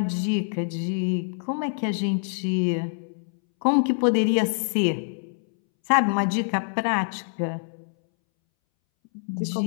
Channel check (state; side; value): silent; right; 62 dB below the other